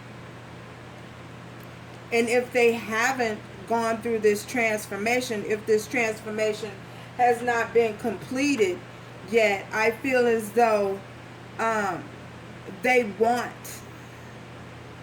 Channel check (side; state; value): both; identical; correlation 1.00